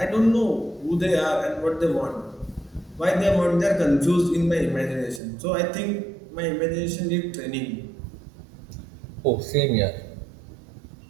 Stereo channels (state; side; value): drops out; left; at 5.2 s